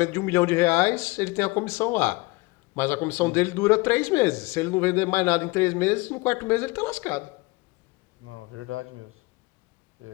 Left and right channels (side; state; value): right; quieter; 24.0 dB